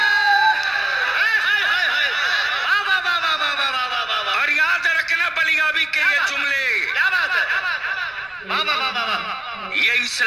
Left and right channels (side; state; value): right; noise; rumble, 29 dB below the sound